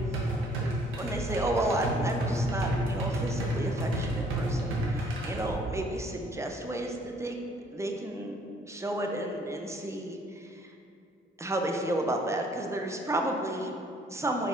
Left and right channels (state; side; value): normal; both; correlation 0.61